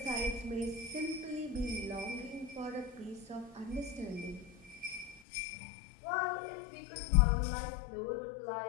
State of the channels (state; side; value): drops out; right; at 5.2 s